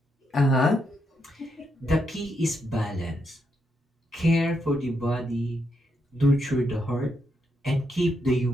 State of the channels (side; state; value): both; normal; correlation 0.80